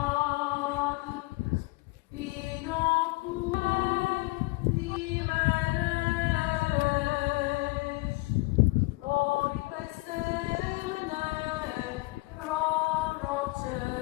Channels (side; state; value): right; quieter; 23.2 dB